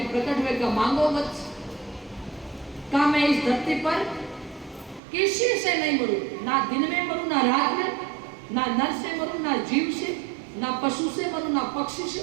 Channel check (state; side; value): drops out; left; at 5.0 s